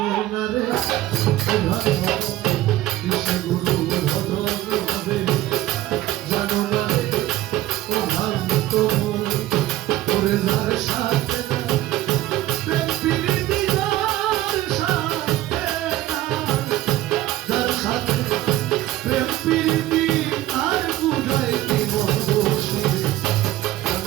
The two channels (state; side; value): quieter; left; 15.2 dB